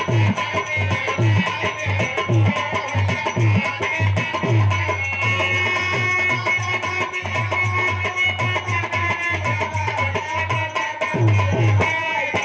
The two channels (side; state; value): both; identical; correlation 1.00